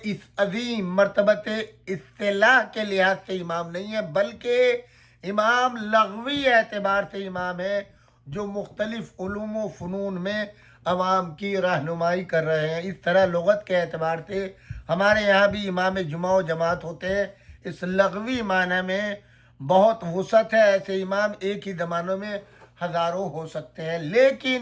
اس عظیم مرتبت اصطلاح کے لحاظ سے امام نہیں ہے، بلکہ امام لغوی اعتبار سے امام ہے، جو مختلف علوم و فنون میں عوام کی رہنمائی کر رہے ہیں۔ اس طرح لغت کے اعتبار سے ہمارے یہاں بھی امام جمعہ و جماعت ہوتے ہیں، اس لغوی معنی میں بہت وسعت ہے، ایسے امام ایک ہی زمانوں میں ہزاروں ہو سکتے ہیں،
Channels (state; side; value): identical; both; correlation 1.00